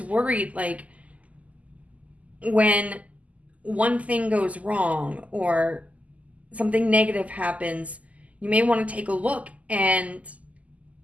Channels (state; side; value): late; left; 0.072 ms